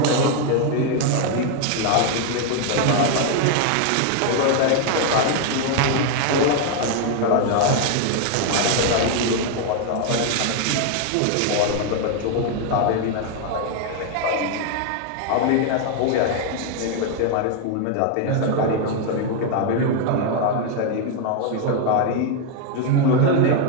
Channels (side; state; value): both; different; correlation 0.00